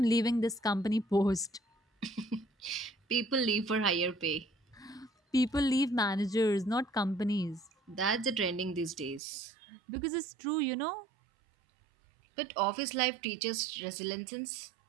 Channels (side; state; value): left; drops out; at 9.2 s